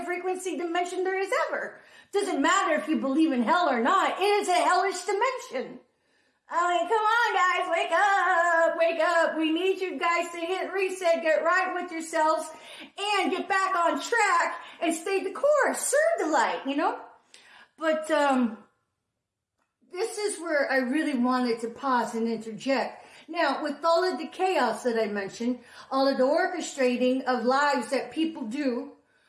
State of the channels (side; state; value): both; identical; correlation 1.00